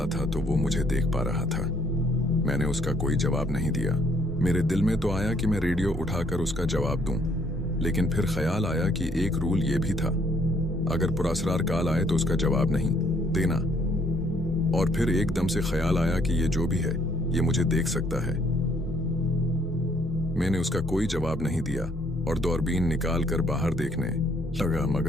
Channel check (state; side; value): normal; both; correlation 0.66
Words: था तो वो मुझे देख पा रहा था। मैंने उसका कोई जवाब नहीं दिया। मेरे दिल में तो आया कि मैं रेडियो उठाकर उसका जवाब दूं, लेकिन फिर ख्याल आया कि एक रूल ये भी था, अगर पुरासरार कॉल आए तो उसका जवाब नहीं देना। और फिर एकदम से ख्याल आया कि ये जो भी है ये मुझे देख सकता है। मैंने उसका कोई जवाब नहीं दिया और दूरबीन निकाल कर बाहर देखने लगा,